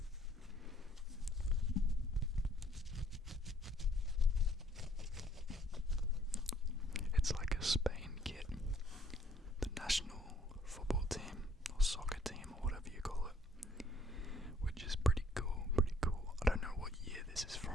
it's like a Spain kit, the national football team or soccer team or whatever you call it, which is pretty cool, pretty cool. I don't know what year this is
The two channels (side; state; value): both; normal; correlation 0.61